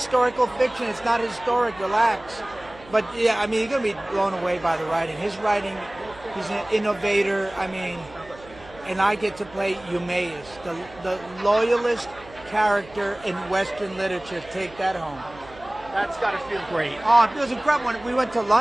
fiction. It's not historic. Relax. But yeah, I mean, you're gonna be blown away by the writing. His writing, he's an innovator. I mean, and I get to play Eumaeus, the loyalist character in Western literature. Take that home. That's got to feel great. Oh, it was incredible. When we went to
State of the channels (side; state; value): right; noise; hum, 21 dB below the sound